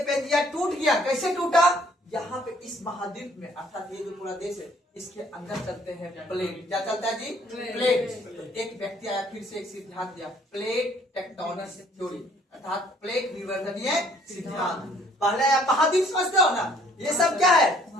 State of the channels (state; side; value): normal; both; correlation 0.61